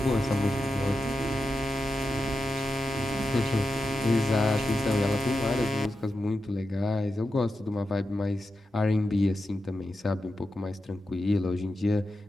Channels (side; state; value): both; normal; correlation 0.89